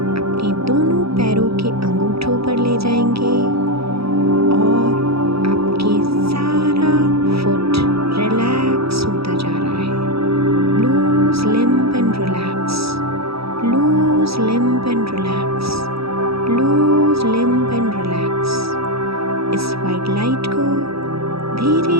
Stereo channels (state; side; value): late; left; 0.77 ms